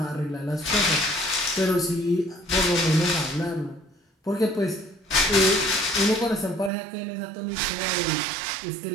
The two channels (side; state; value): left; drops out; at 6.7 s